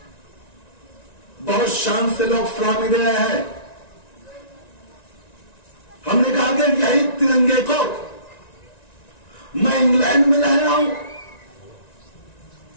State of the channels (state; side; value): late; right; 1.9 ms